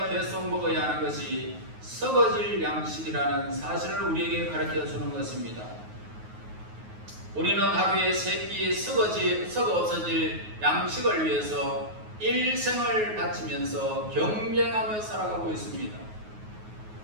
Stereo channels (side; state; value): left; late; 9.4 ms